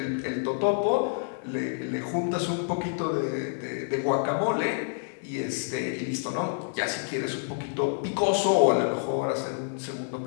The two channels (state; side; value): silent; right; digital silence